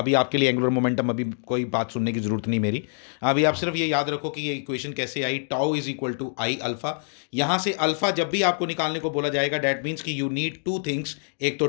आपके लिए एंगुलर मोमेंटम अभी कोई बात सुनने की जरूरत नहीं मेरी। अभी आप सिर्फ ये याद रखो कि ये इक्वेशन कैसे आई, tau is equal to I alpha. यहाँ से अल्फा जब भी आपको निकालने को बोला जाएगा, डैट मीन्स कि यू नीड टू थिंग्स, एक तो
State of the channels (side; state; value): right; silent; digital silence